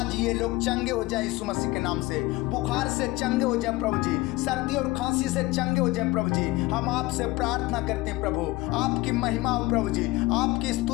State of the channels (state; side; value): quieter; right; 20.5 dB